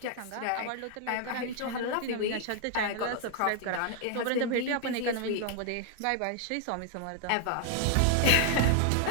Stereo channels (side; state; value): both; different; correlation 0.00